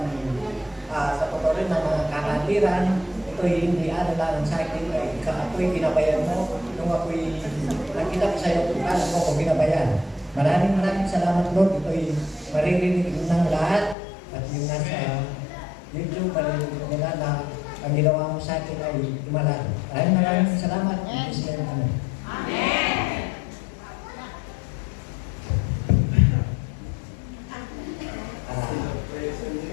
sa totoo rin ng mga kakatiran. Ito'y hindi lang sa akin, ako'y ginabayan mo. Nung ako'y nakita ko sa iyo, paano mo ko ginabayan. Maraming salamat, Lord. Ito'y maririnig ng lahat. At yung nasa YouTube, maririnig nila na ang ginawa mo sa akin ay imalan. Maraming salamat. Amen. Amen.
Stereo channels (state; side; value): drops out; right; at 14.0 s